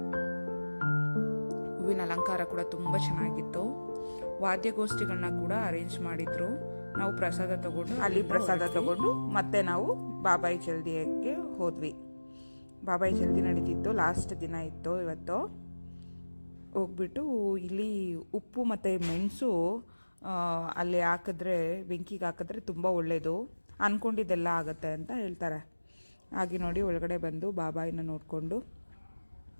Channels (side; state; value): both; inverted; correlation -1.00